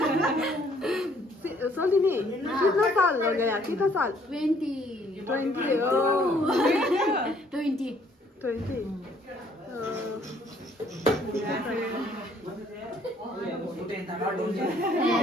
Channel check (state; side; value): normal; both; correlation 0.63